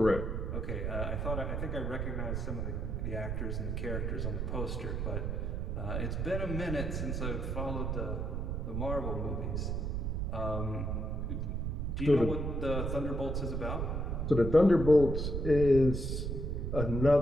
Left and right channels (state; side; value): noise; right; rumble, 1 dB below the sound